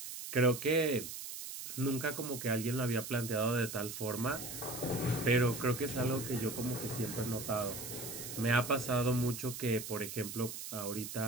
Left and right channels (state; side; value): noise; right; hiss, 8 dB below the sound